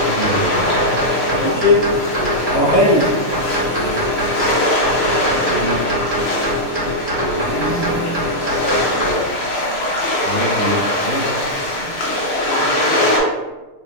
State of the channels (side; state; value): right; late; 6.7 ms